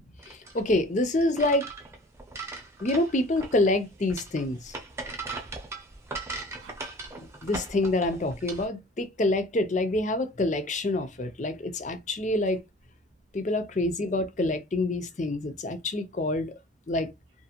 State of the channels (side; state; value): both; normal; correlation 0.46